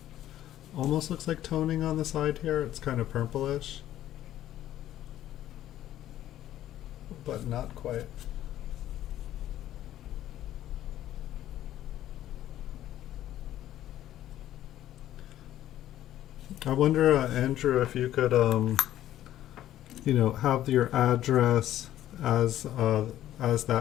almost looks like toning on the side here. It's kind of purplish, but not quite. I wonder, Andrew, if you could, you know, have your address as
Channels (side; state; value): right; quieter; 12.8 dB